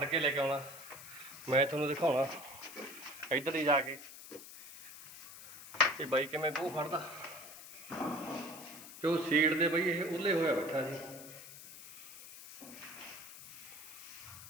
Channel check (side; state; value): left; noise; hiss, 15 dB below the sound